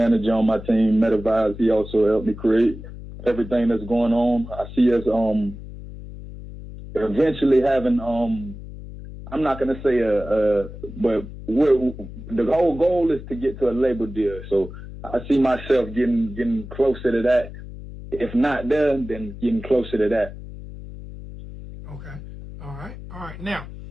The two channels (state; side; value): noise; left; hum, 13 dB below the sound